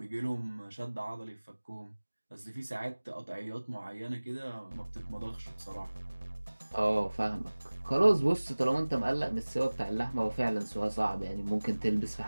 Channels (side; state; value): both; inverted; correlation -1.00